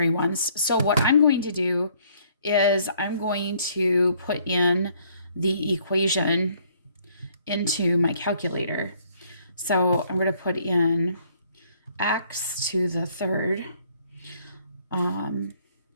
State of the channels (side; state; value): both; inverted; correlation -0.63